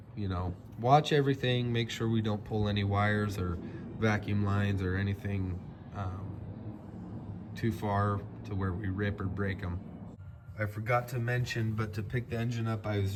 you know, watch everything, make sure we don't pull any wires or vacuum lines or anything too far to where we rip or break them. I forgot to mention, but to pick the engine up, I was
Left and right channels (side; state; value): both; identical; correlation 1.00